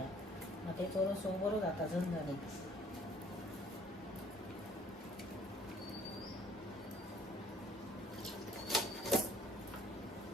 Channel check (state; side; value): normal; both; correlation 0.59